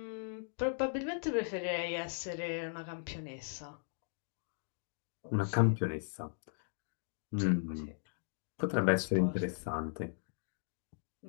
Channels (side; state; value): right; silent; digital silence